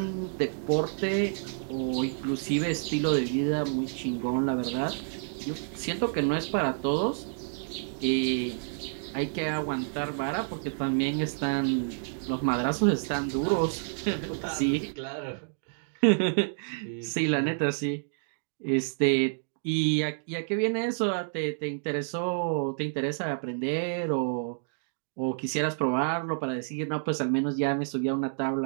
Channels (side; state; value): left; silent; digital silence